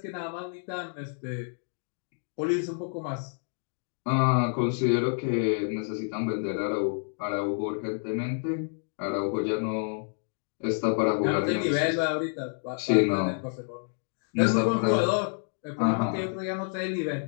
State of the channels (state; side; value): silent; right; digital silence